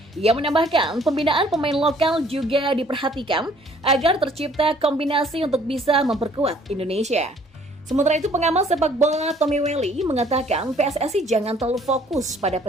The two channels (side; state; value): both; normal; correlation 0.59